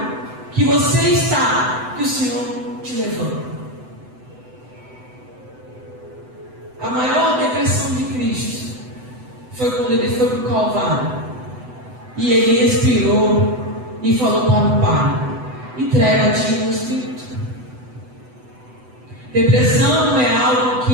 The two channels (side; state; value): left; late; 8.0 ms